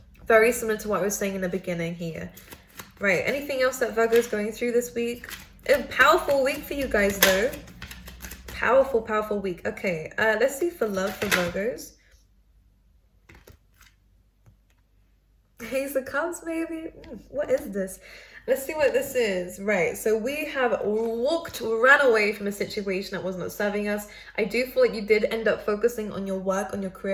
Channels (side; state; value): both; identical; correlation 1.00